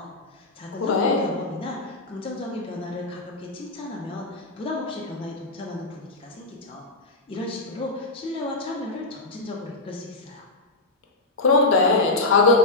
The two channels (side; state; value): right; quieter; 3.0 dB